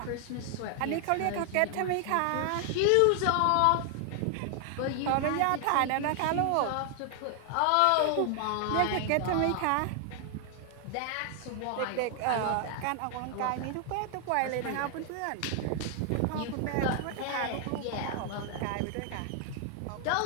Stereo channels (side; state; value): both; different; correlation 0.00